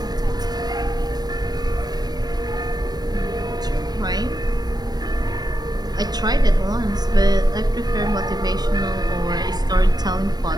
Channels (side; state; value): left; late; 0.19 ms